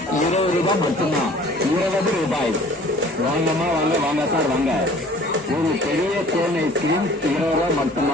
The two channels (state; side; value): normal; both; correlation 0.50